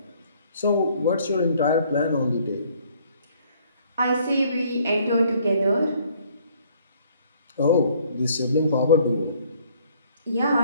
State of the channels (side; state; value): both; inverted; correlation -0.62